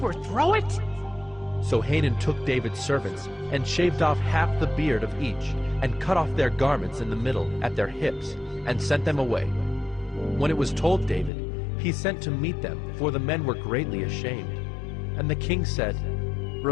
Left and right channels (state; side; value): drops out; right; at 11.3 s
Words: it?" So Hanun took David's servants and shaved off half the beard of each and cut off their garments in the middle at their hips and sent them away. When it was told David, he sent to meet them, for the men were greatly ashamed. And the king said,